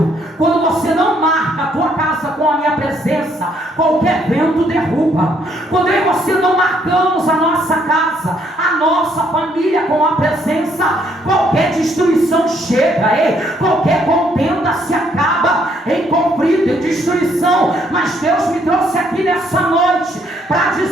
quando você não marca a tua casa com a minha presença, qualquer vento derruba. Quando eu e você não marcamos a nossa casa, a nossa família com a presença, qualquer destruição chega, qualquer contenda se acaba em conflito e destruição. Mas Deus me trouxe aqui nessa noite para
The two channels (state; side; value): normal; both; correlation 0.69